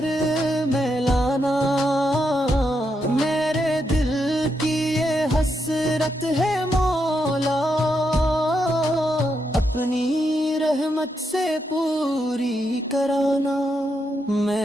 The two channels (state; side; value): normal; both; correlation 0.81